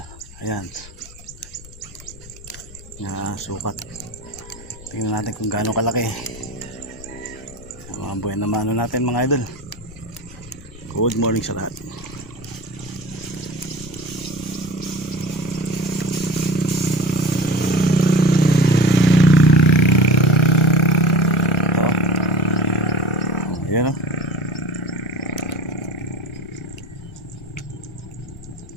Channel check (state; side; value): noise; left; rumble, 18 dB below the sound